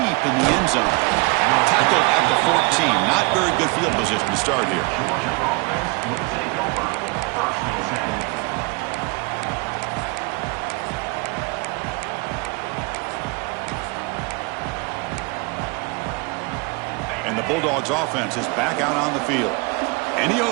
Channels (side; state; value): left; quieter; 27.8 dB